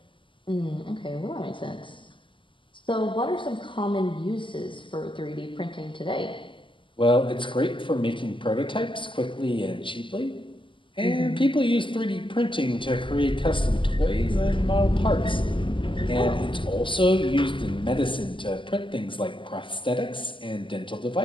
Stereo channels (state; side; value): late; right; 0.25 ms